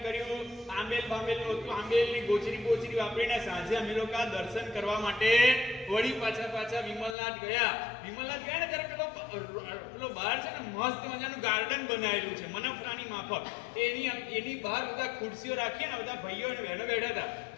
કર્યું. આંબેલ બાંબેલનું હતું. આંબેલની ગોચરી વાપરીને સાંજે અમે લોકો દર્શન કરવા માટે વળી પાછા વિમલનાથ ગયા. વિમલનાથ ગયા ને ત્યારે પેલો બહાર છે ને મસ્ત મજાનું ગાર્ડન બનાવેલું છે મનફરાની માફક. એની બહાર બધા ખુરશીઓ રાખીએ ને બધા ભાઈઓ અને બહેનો બેઠા હતા.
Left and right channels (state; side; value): drops out; right; at 7.2 s